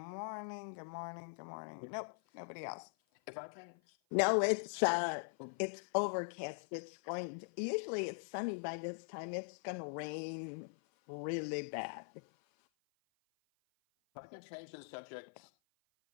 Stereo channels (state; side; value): silent; right; 50 dB below the other